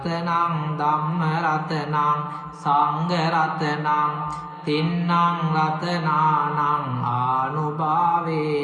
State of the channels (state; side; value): identical; both; correlation 1.00